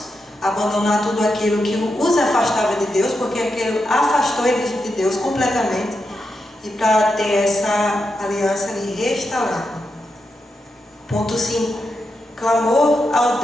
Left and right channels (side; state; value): both; normal; correlation 0.86